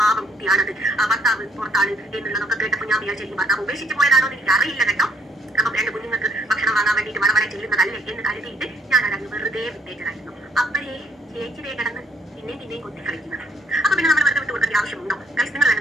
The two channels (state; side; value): normal; both; correlation 0.66